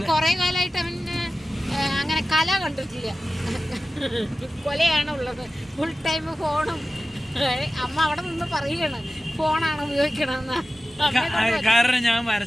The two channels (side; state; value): both; normal; correlation 0.95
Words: കുറേ കാലമായിട്ട് അവൻ അങ്ങനെ കല കണ്ടിട്ടില്ല. കൊലയാണ് ഉള്ളത്. ഫുൾ ടൈം ഫോണും. അമ്മ അവിടെ നിന്ന് പറയുകയാണ് ഫോണാണ് ഉപയോഗിക്കണമെന്ന്. കാരണം ഞാൻ